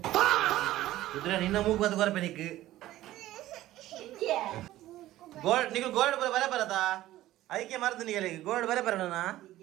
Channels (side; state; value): left; quieter; 15.1 dB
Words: ಕುದುರೆ ನಿನ್ನ ಮೂಗು ಬತ್ತು ಕೊರಪೆ ನಿಕ್ಕು ಗೋಲ್ಡ್ ನಿಗು ಗೋಲ್ಡ್ ಬರ ಬರತಾ ಅದಕ್ಕೆ ಮರ್ದು ನಿಗಲಿ ಗೋಲ್ಡ್ ಬರ ಬರೋಣ